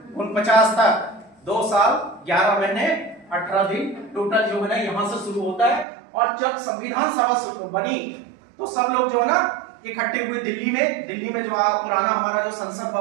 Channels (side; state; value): left; drops out; at 5.9 s